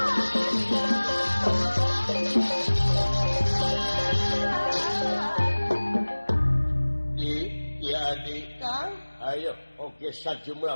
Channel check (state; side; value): inverted; both; correlation -1.00